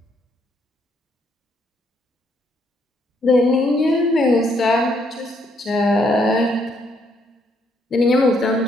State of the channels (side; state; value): both; normal; correlation 0.71